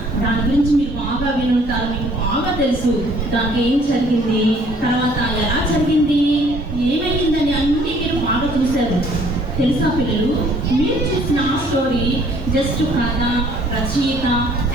దాని గురించి మీరు బాగా వినుంటారు. మీకు బాగా తెలుసు దానికి ఏం జరిగింది, తర్వాత ఎలా జరిగింది, ఏమైందని అన్నీ మీరు బాగా చూశారు. తెలుసా పిల్లలు? మీరు చూసిన ఆ స్టోరీ జస్ట్ కథ, రచయిత,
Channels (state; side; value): normal; both; correlation 0.59